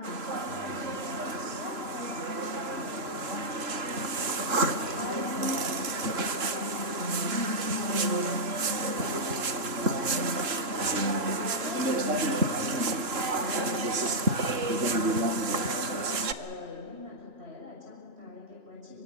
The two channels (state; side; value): late; left; 3.0 ms